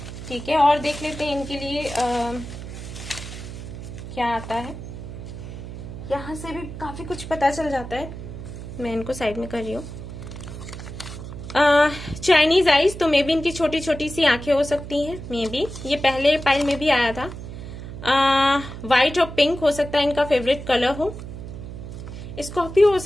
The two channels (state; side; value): noise; right; hum, 10 dB below the sound